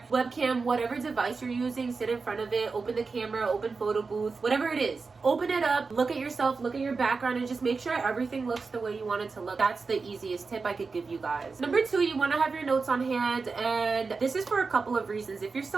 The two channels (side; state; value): left; quieter; 4.5 dB